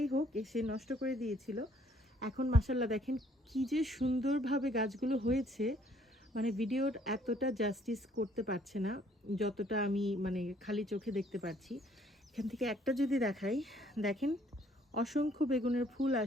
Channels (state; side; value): normal; both; correlation 0.63